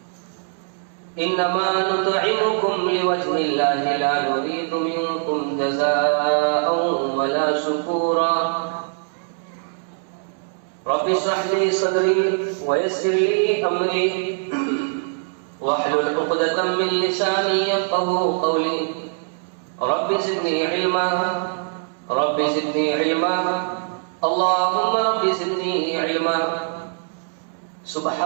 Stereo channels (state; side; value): silent; left; 64 dB below the other